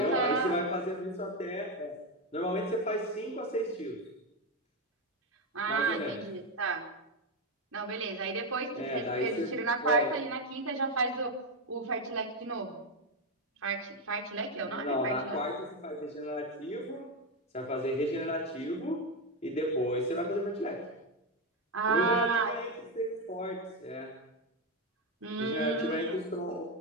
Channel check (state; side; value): normal; both; correlation 0.08